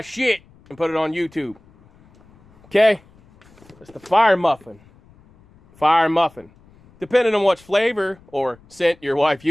and put it on YouTube. Okay? It's the fire muffin. Fire muffin. Depending on what flavor or scent your wife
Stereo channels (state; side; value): noise; left; rumble, 28 dB below the sound